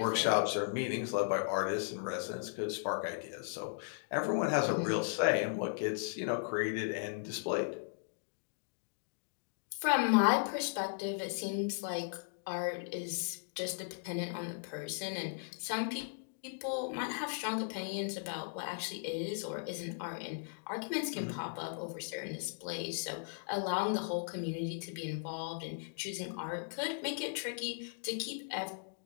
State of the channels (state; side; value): silent; right; digital silence